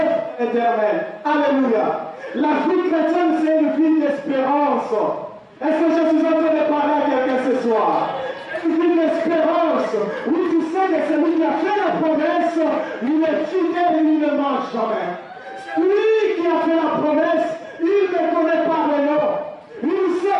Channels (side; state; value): both; identical; correlation 1.00